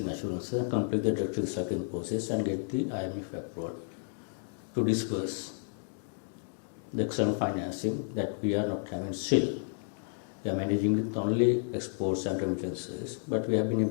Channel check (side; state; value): right; silent; digital silence